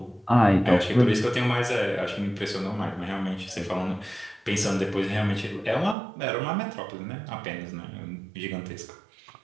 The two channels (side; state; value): left; drops out; at 6.0 s